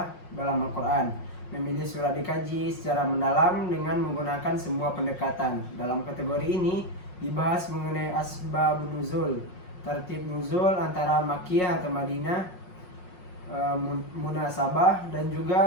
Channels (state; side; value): late; right; 5.5 ms